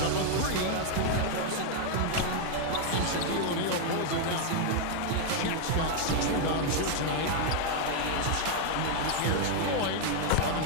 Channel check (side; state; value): both; different; correlation 0.00